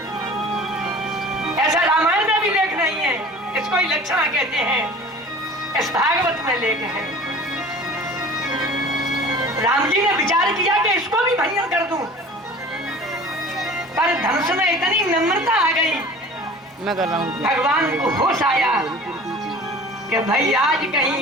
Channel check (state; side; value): normal; both; correlation 0.43